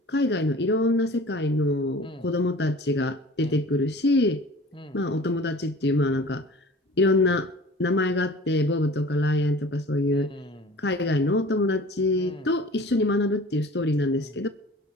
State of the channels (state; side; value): normal; both; correlation 0.43